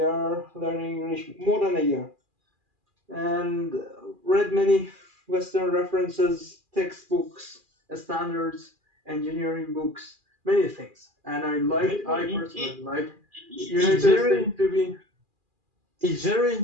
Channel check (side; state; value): left; late; 2.4 ms